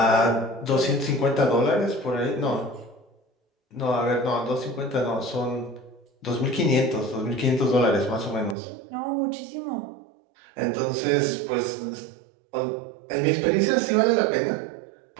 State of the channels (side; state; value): left; drops out; at 8.6 s